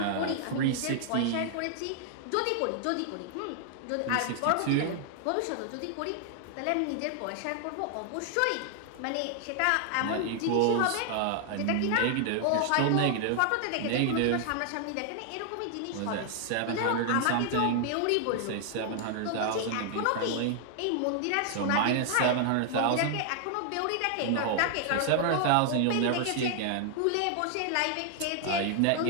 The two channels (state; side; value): different; both; correlation 0.00